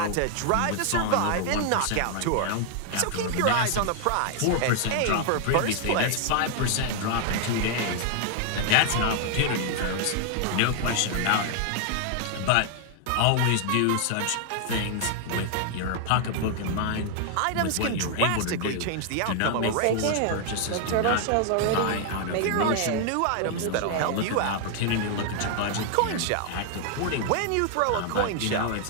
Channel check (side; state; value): both; different; correlation 0.00